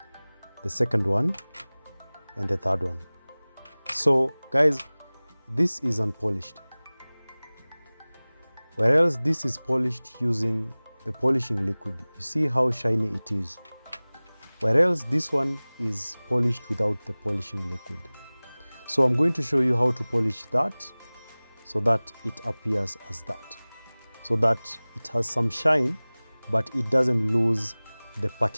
the second one, and the third one. So guys, this is unpolished, whereas this is polished using the polishing liquid. You see how shiny it is, whereas this one is polished without the polishing liquid. So I'm going to show you how to polish that so that it appears as that, so that it has some shine but it doesn't lose the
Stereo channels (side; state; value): both; inverted; correlation -1.00